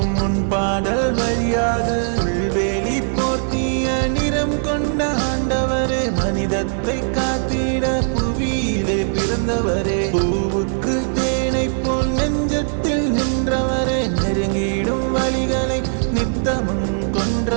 உன் பாடல் வழியாது. புல்வேலி போர்த்திய நிறம் கொண்ட ஆண்டவரே, மனிதத்தை காத்திட புவியிலே பிறந்தவரே. பூவுக்கு தேனை போல் நெஞ்சத்தில் நின்றவரே, நெருங்கிடும் வழிகளை நித்தமும்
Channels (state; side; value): silent; left; digital silence